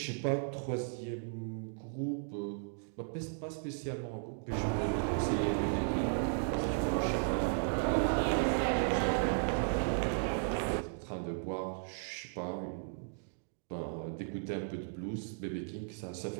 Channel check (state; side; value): silent; left; digital silence